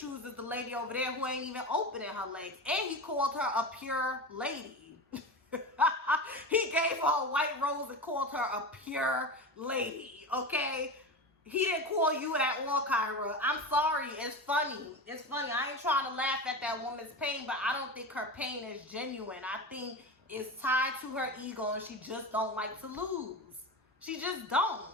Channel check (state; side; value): normal; both; correlation 0.25